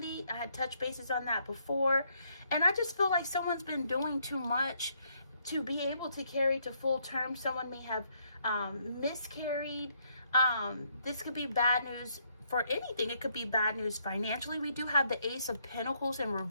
I had touched bases on that before, and I just feel like someone's been doing too much to be able to carry to full term. Someone may have miscarried. This could be bad news for anything. It could be bad news financially. We do have the Ace of Pentacles in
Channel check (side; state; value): both; inverted; correlation -0.71